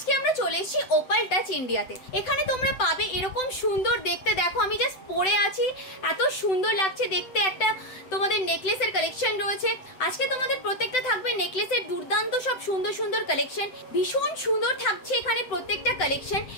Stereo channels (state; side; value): late; right; 7.9 ms